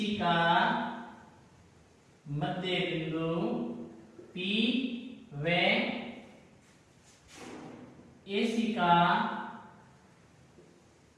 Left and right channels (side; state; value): both; identical; correlation 1.00